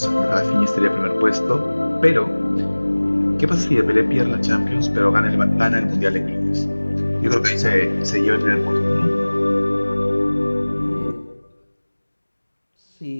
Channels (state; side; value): inverted; both; correlation -1.00